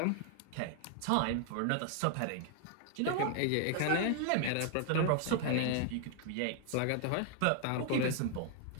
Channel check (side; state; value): both; different; correlation 0.00